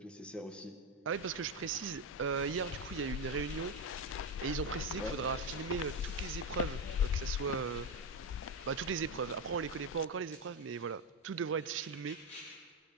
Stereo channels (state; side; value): normal; both; correlation 0.10